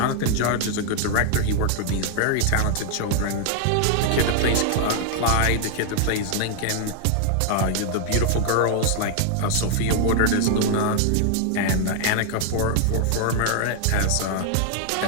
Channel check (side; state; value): both; different; correlation 0.00